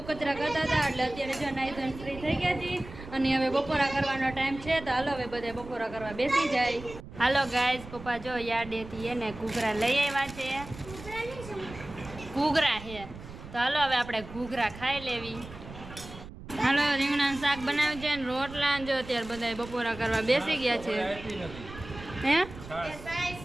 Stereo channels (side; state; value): right; noise; rumble, 14 dB below the sound